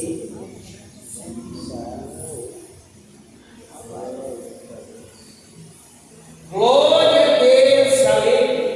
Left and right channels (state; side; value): identical; both; correlation 1.00